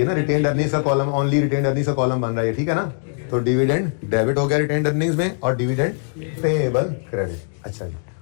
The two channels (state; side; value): silent; right; digital silence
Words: ना रिटेन्ड अर्निंग्स का कॉलम, ओनली रिटेन्ड अर्निंग्स का कॉलम बन रहा है, ठीक है ना? तो डिविडेंड डेबिट हो गया रिटेन्ड अर्निंग्स में और डिविडेंड पेएबल क्रेडिट। अच्छा जी,